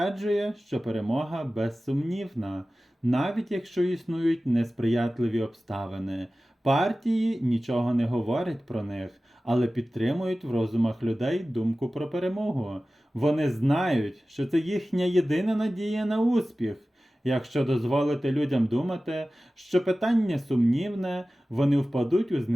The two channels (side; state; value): both; normal; correlation 0.96